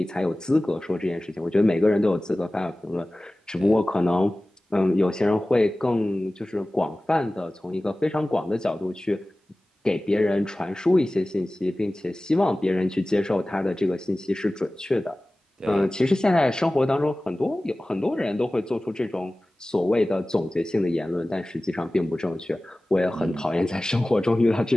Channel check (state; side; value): normal; both; correlation 0.97